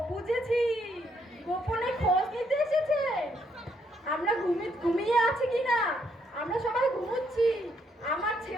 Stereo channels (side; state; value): both; normal; correlation 0.73